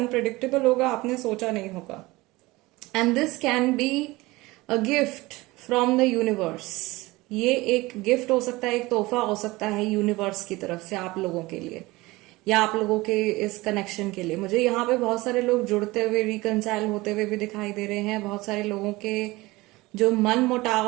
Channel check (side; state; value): left; quieter; 20.9 dB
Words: होगा, आपने सोचा नहीं होगा। And this can be a gift from the universe. ये एक गिफ्ट हो सकता है, एक तोहफा हो सकता है यूनिवर्स की तरफ से आप लोगों के लिए या आप लोगों के इस कनेक्शन के लिए। मुझे यहाँ पे बहुत सारे लोग जुड़ते हुए, रिकंसाइल होते हुए भी दिखाई दे रहे हैं। बहुत सारे लोगों के जो मन